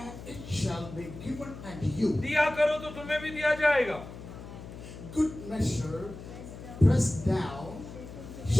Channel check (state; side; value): noise; left; hum, 13 dB below the sound